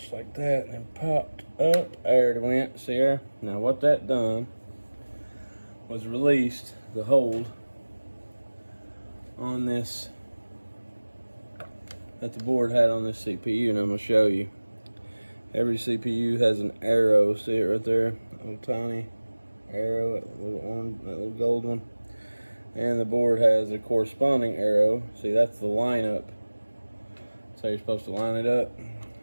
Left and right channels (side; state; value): both; inverted; correlation -1.00